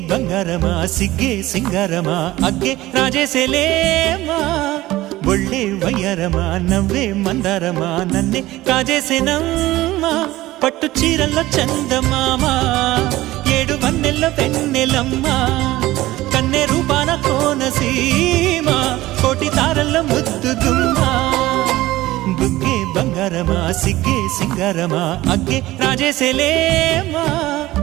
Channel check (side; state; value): left; quieter; 17.1 dB